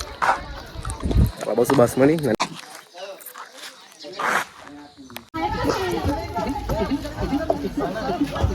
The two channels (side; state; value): both; identical; correlation 1.00